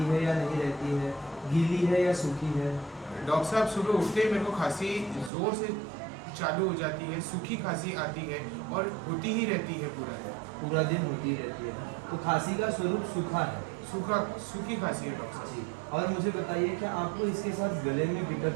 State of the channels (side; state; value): left; drops out; at 5.3 s